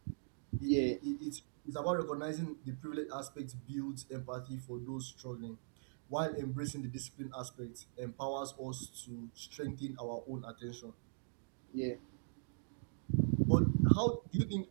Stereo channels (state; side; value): silent; left; digital silence